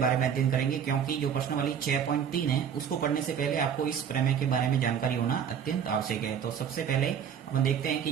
में अध्ययन करेंगे, क्योंकि जो प्रश्नावली 6.3 है उसको पढ़ने से पहले आपको इस प्रमेय के बारे में जानकारी होना अत्यंत आवश्यक है। तो सबसे पहले अपन देखते हैं कि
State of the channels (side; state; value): left; quieter; 8.0 dB